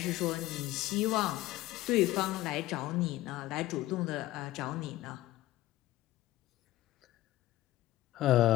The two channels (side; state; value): right; quieter; 16.0 dB